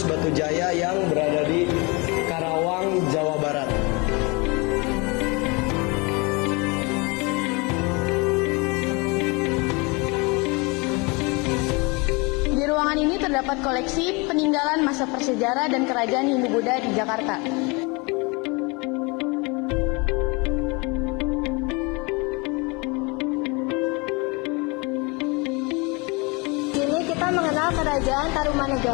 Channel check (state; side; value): quieter; right; 28.3 dB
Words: Batu Jaya yang berada di Karawang, Jawa Barat. Di ruangan ini terdapat koleksi peninggalan masa prasejarah dan kerajaan Hindu-Buddha di Jakarta. Di sini kita mengenal Kerajaan